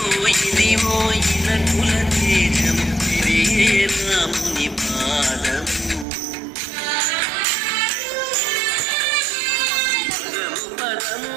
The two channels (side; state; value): left; drops out; at 6.1 s